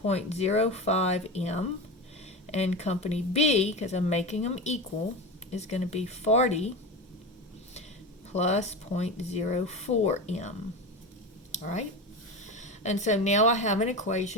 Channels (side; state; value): both; normal; correlation 0.24